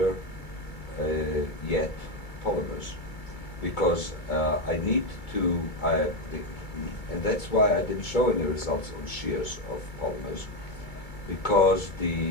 yet polymers, because I need to, and that's why I didn't show any results on shears of polymers, because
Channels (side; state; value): right; late; 2.2 ms